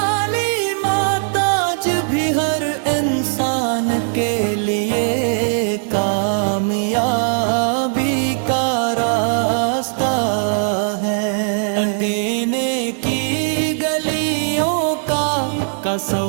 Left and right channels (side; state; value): left; silent; 56 dB below the other